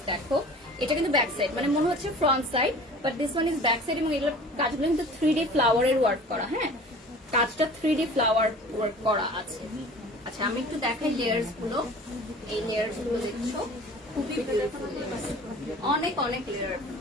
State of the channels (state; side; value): normal; both; correlation 0.43